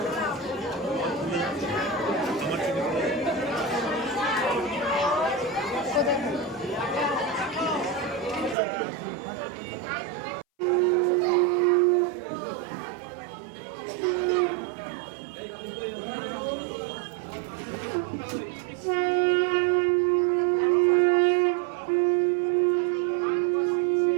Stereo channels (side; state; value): left; drops out; at 8.6 s